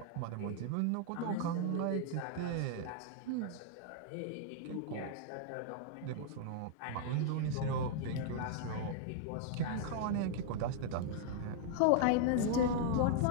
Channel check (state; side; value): different; both; correlation -0.01